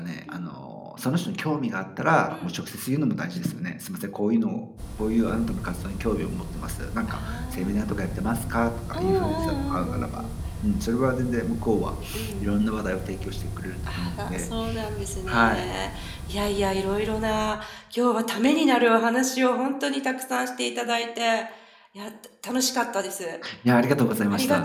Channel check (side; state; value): both; identical; correlation 1.00